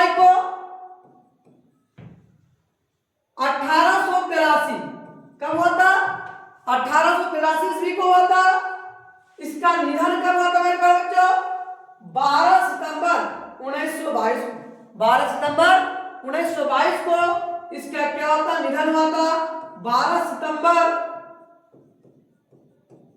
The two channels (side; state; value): both; identical; correlation 1.00